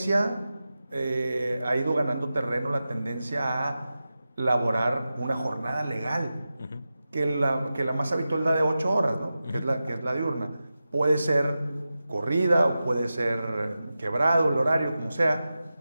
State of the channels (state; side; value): inverted; both; correlation -0.93